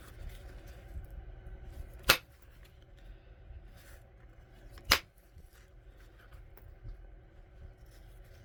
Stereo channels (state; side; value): identical; both; correlation 1.00